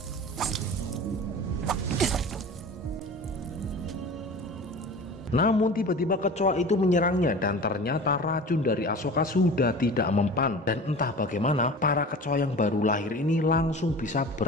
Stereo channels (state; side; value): normal; both; correlation 0.37